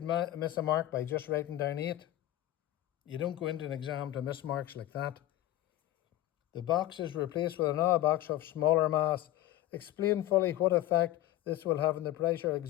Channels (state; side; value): quieter; right; 14.5 dB